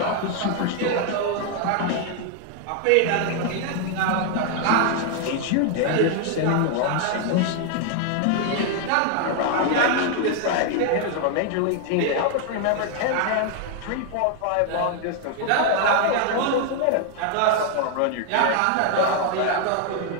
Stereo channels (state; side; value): different; both; correlation 0.00